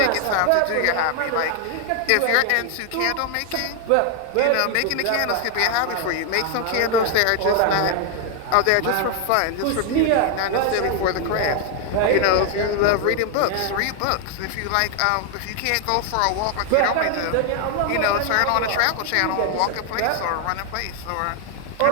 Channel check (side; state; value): both; different; correlation 0.00